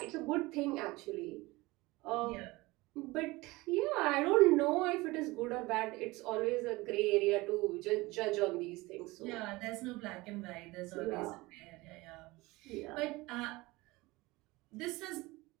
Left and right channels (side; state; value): left; quieter; 21.6 dB